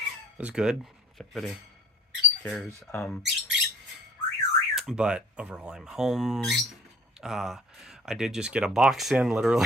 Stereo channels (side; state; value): both; normal; correlation 0.52